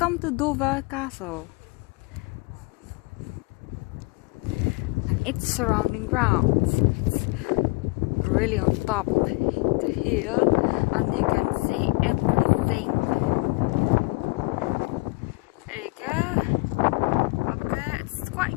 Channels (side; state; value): right; quieter; 25.3 dB